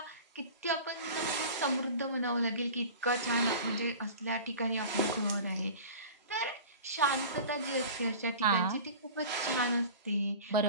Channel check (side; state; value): both; inverted; correlation -0.37